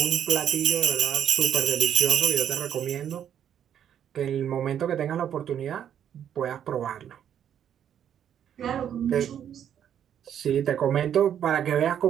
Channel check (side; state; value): left; quieter; 9.4 dB